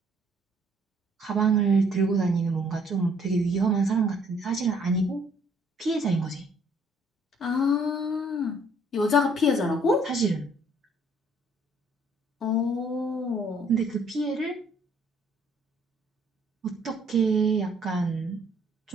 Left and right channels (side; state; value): both; normal; correlation 0.63